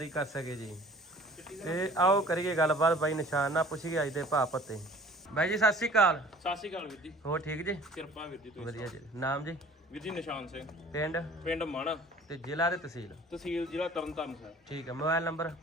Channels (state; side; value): normal; both; correlation 0.49